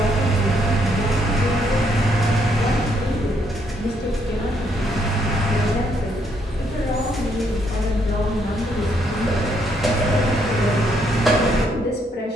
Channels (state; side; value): normal; both; correlation 0.73